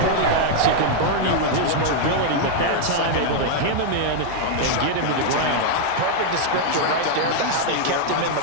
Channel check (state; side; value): different; both; correlation 0.00